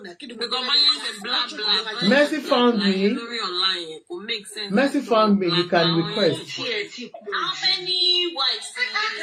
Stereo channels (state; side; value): identical; both; correlation 1.00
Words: Mercy found me. Mercy found me. You can request. How many wives? The